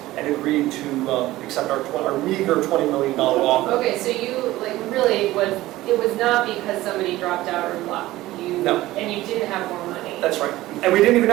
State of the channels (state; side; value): quieter; left; 16.8 dB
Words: and agreed to accept our meager $20 million offer. Okay, so you, really it was not because somebody dropped out or left. No. And you didn't have more money. That's right. And we didn't even